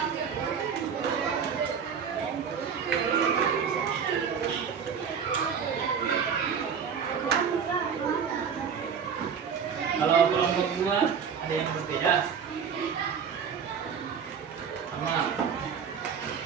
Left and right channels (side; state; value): left; quieter; 6.9 dB